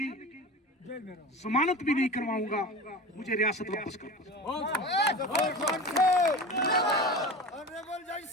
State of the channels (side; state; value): both; normal; correlation 0.31